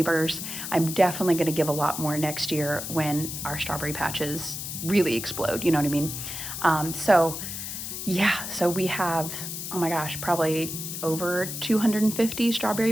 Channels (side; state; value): left; noise; hiss, 6 dB below the sound